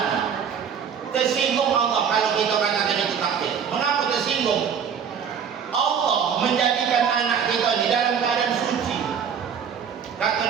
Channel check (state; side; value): quieter; left; 7.3 dB